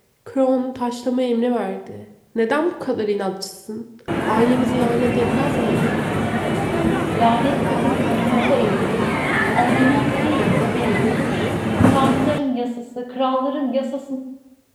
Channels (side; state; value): both; identical; correlation 1.00